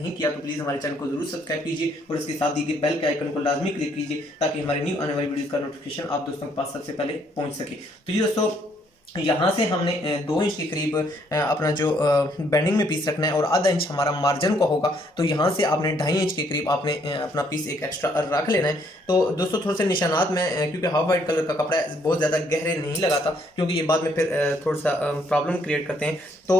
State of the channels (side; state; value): both; normal; correlation 0.68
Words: किया तो प्लीज हमारे चैनल को जरूर सब्सक्राइब कीजिए और इसके साथ दी गई बेल के आइकन को लाजमी क्लिक कीजिए ताकि हमारी न्यू आने वाली वीडियोस का नोटिफिकेशन आप दोस्तों के पास सबसे पहले पहुंच सके। तो ये दोस्तों यहाँ से हमने 2 इंच के करीब अपना जो बेंडिंग में पीस रखना है और आधा इंच हमारा मार्जिन का होगा। तो यहाँ से आपने 2.5 इंच के करीब आपने अपना पीस एक एक्स्ट्रा रख लेना है। तो दोस्तों थोड़े से निशानात में क्योंकि हाफ वाइट कलर का कपड़ा है बहुत ज़्यादा गहरे नहीं लगाता क्योंकि ये बाद में फिर थोड़ा सा प्रॉब्लम क्रिएट करते हैं। तो